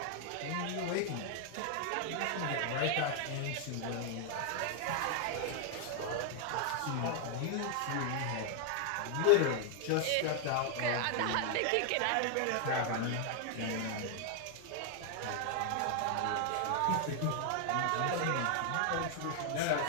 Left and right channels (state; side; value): different; both; correlation 0.00